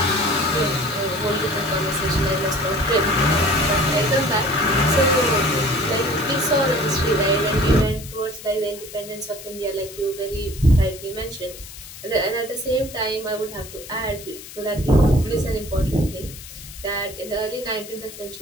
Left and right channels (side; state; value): left; noise; hiss, 15 dB below the sound